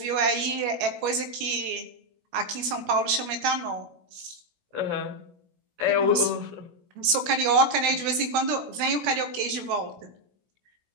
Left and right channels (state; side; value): late; left; 17 ms